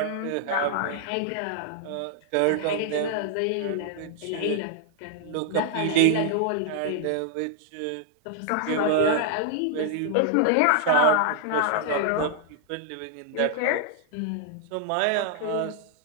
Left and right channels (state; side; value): different; both; correlation -0.01